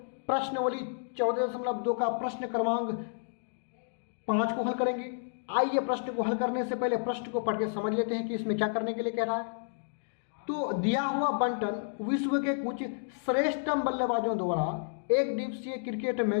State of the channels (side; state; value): right; silent; digital silence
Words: प्रश्नावली 14.2 का प्रश्न क्रमांक 5 को हल करेंगे। आइए प्रश्न को हल करने से पहले प्रश्न को पढ़ के समझ लेते हैं कि इसमें क्या करने के लिए कह रहा है। तो दिया हुआ बंटन विश्व के कुछ श्रेष्ठतम बल्लेबाजों द्वारा एक दिवसीय क्रिकेट